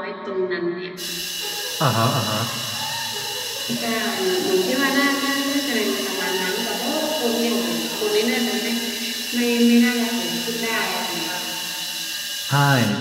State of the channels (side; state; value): both; identical; correlation 1.00